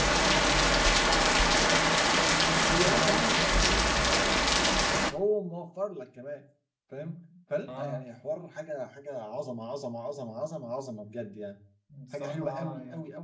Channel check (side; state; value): both; identical; correlation 1.00